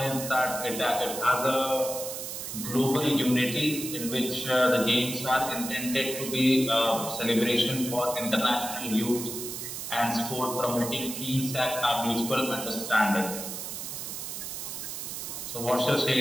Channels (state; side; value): noise; right; hiss, 7 dB below the sound